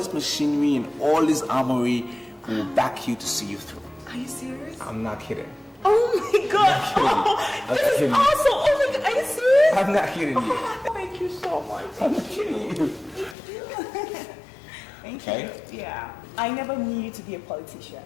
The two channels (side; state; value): right; drops out; at 13.4 s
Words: machinery and all this armory, will back you to see you through. Are you serious? I'm not kidding. Oh my god! Oh, this is awesome! Oh my god, are you serious? I'm not kidding you. Oh, thank you so much. I'm not kidding you. Thank Okay. you. Yeah. I never knew you to be a politician.